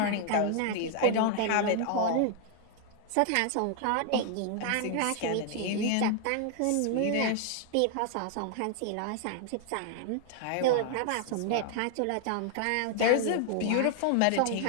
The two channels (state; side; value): different; both; correlation 0.00